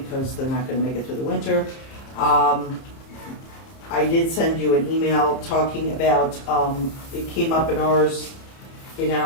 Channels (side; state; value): right; late; 30 ms